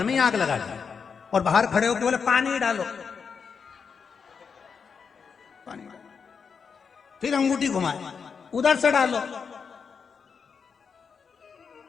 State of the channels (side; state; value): right; quieter; 6.0 dB